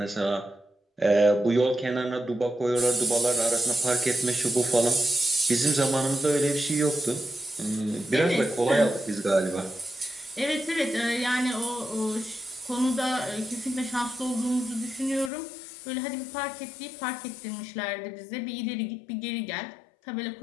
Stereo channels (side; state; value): right; drops out; at 15.3 s